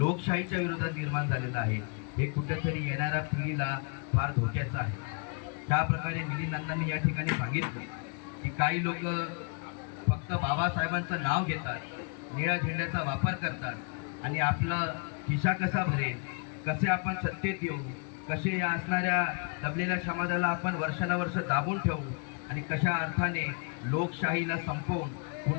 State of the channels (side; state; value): right; quieter; 36.0 dB